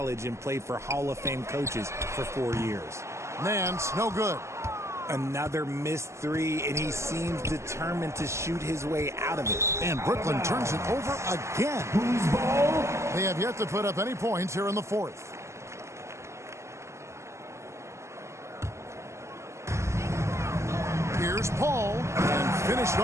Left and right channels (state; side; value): late; left; 0.14 ms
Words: and play for Hall of Fame coaches for 4 years. Nance, no good. Another missed 3, and he seems determined to shoot his way out of it. And Brooklyn turns it over again. They have yet to put up any points here in the fourth. Here's Paul, and finished